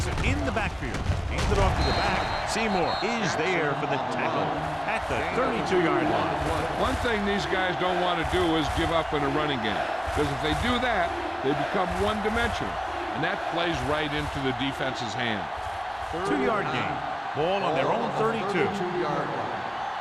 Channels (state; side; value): identical; both; correlation 1.00